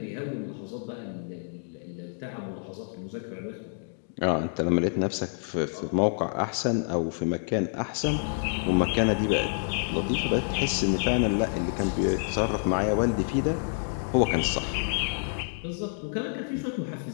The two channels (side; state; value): right; silent; digital silence